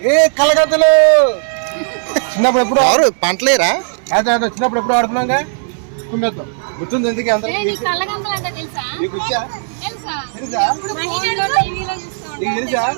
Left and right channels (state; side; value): silent; left; digital silence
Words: కలగద్దలు చిన్నప్పుడు ఎప్పుడు ఎవరు పంటలేరా? చిన్నప్పుడు ఎప్పుడు ఆడుకున్నాగా కుమ్మేద్దాం. గుర్తుంది ఎందుకు అందరూ? కళ్ళగంతలు అంటే తెలుసా? నీకు వచ్చా? తెలుసా? తెలుసా? టీవీలో చూస్తాం. నీకు తెలుసా?